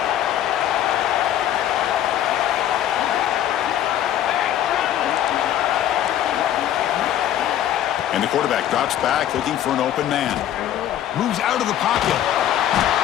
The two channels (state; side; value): quieter; right; 11.5 dB